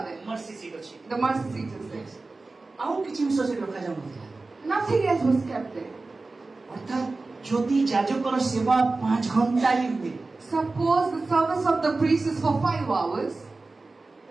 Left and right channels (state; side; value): quieter; left; 3.5 dB